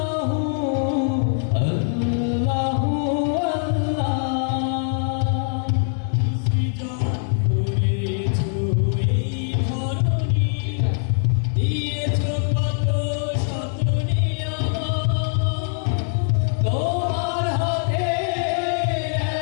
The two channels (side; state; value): right; silent; 64 dB below the other